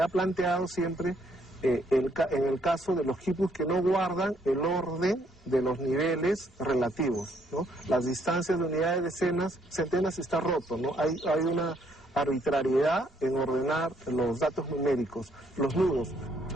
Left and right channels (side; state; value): both; normal; correlation 0.70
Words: planteado siempre en el caso de los quipus que no guardan el orden de los niveles relativos, ¿no? Las distancias de unidades, decenas, centenas está roto, ¿no? Hay una arbitrariedad en ordenar los datos numéricos, los nudos.